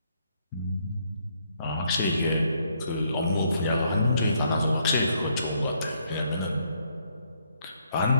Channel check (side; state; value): both; inverted; correlation -0.71